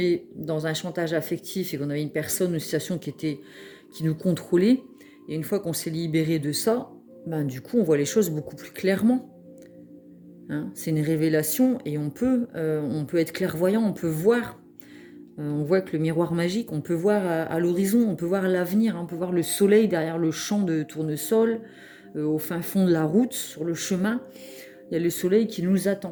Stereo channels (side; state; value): both; identical; correlation 1.00